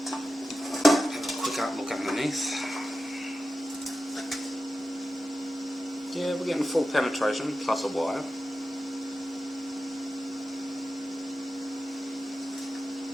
Have a quick look underneath. Yeah, we're getting full penetration plus a wire.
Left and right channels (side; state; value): both; normal; correlation 0.92